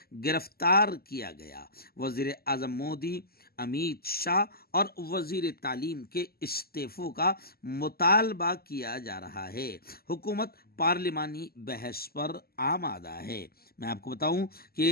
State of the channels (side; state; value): right; late; 0.45 ms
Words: گرفتار کیا گیا۔ وزیر اعظم مودی، امیت شاہ اور وزیر تعلیم کے استعفوں کا مطالبہ کیا جا رہا ہے۔ حکومت پارلیمانی بحث پر آمادہ ہے۔ میں آپ کو بتاؤں